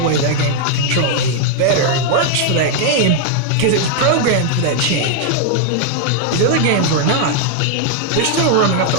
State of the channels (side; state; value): both; different; correlation 0.00